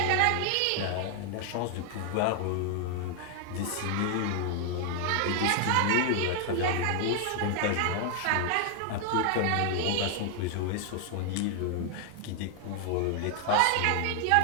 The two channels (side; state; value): both; different; correlation 0.00